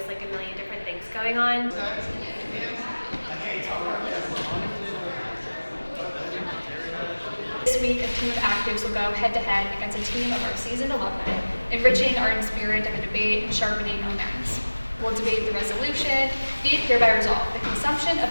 like a million different things going on. This week, a team of actives will go head-to-head against a team of our seasoned alumni, enriching our spirit of a debate and sharpening our minds. We'll debate the resolution, be it hereby resolved. The consumption of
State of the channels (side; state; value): both; inverted; correlation -1.00